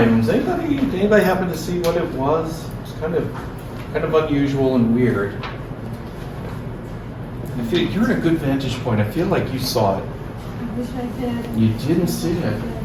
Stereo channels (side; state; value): both; identical; correlation 1.00